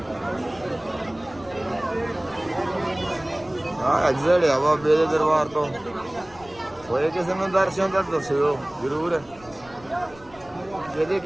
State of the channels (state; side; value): noise; left; rumble, 23 dB below the sound